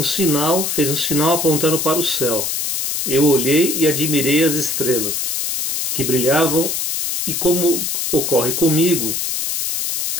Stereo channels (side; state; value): left; noise; hiss, 1 dB below the sound